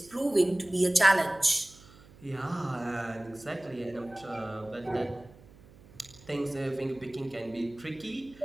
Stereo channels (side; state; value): right; noise; hum, 23 dB below the sound